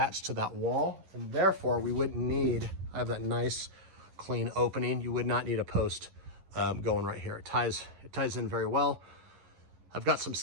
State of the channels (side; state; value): left; late; 11 ms